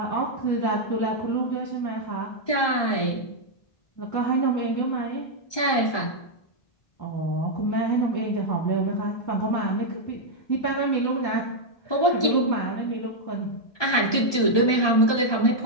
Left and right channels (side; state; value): right; late; 1.2 ms